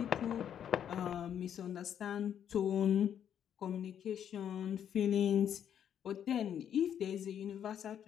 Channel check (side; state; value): right; quieter; 9.2 dB